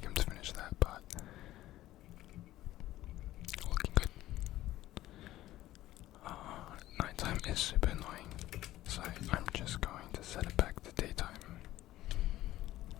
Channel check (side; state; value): right; quieter; 15.1 dB